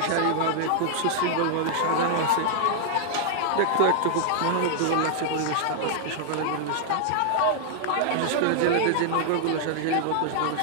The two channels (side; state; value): both; different; correlation -0.01